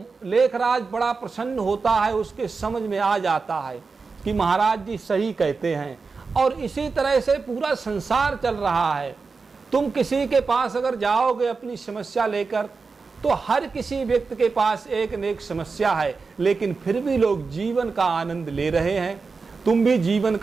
लेखराज बड़ा प्रसन्न होता है, उसके समझ में आ जाता है कि महाराज जी सही कहते हैं। और इसी तरह से पूरा संसार चल रहा है। तुम किसी के पास अगर जाओगे अपनी समस्या लेकर, तो हर किसी व्यक्ति के पास एक न एक समस्या है, लेकिन फिर भी लोग जीवन का आनंद ले रहे हैं। तुम भी जीवन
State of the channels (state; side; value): quieter; left; 4.6 dB